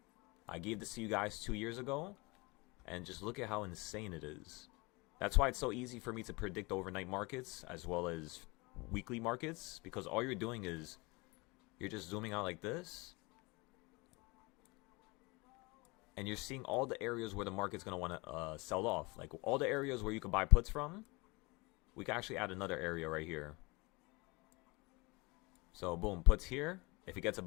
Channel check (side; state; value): right; quieter; 25.9 dB